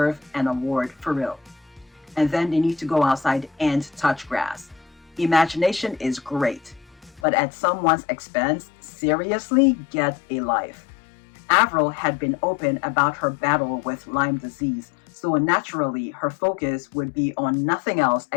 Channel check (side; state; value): right; drops out; at 7.2 s